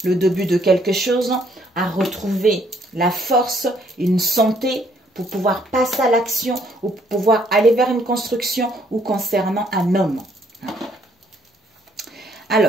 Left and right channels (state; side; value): normal; both; correlation 0.67